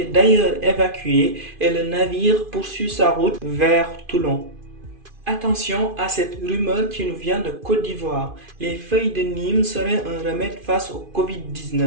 d'ailleurs évacués et le navire poursuit sa route vers Toulon. Attention à cette rumeur qui nous vient de Côte d'Ivoire. Les feuilles de Nîmes seraient un remède face au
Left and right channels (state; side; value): late; left; 2.5 ms